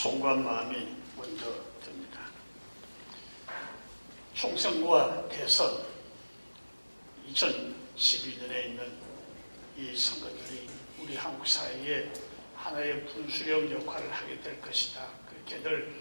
마음이 먼저 듭니다. 총선과 대선 2012년에 있는 이 선거들이 우리 한국 사회에 하나의 분수령 역할을 하게 될 것이다. 그렇게들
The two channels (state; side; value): inverted; both; correlation -1.00